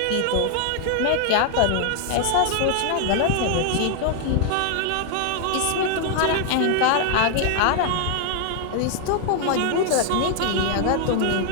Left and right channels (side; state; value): both; different; correlation 0.00